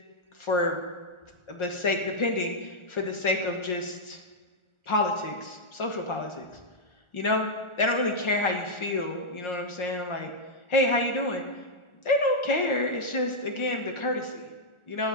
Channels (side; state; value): right; late; 1.4 ms